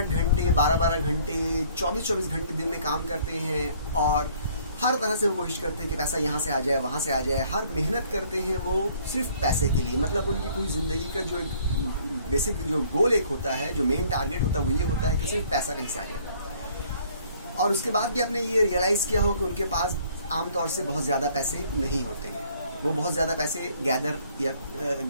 घंटे, 12-12 घंटे, 24-24 घंटे दिन में काम करते हैं और हर तरह से वो कोशिश करते हैं कि पैसा यहाँ से आ जाए, वहाँ से आ जाए। हर मेहनत करते हैं वो सिर्फ पैसे के लिए। मतलब उनकी पूरी ज़िंदगी का जो एक बेसिक जो गोल एक होता है, जो मेन टारगेट होता है, वो ये होता है कि सिर्फ पैसा कहीं से आ जाए। और उसके बाद भी आपने ये रियलाइज़ किया हो कि उनके पास आमतौर से बहुत ज़्यादा पैसे नहीं होते हैं। वो बहुत ज़्यादा पैसे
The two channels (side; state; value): both; inverted; correlation -0.59